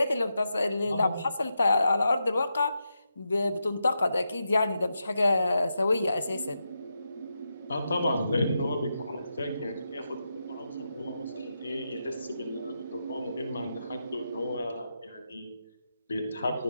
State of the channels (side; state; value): both; inverted; correlation -0.86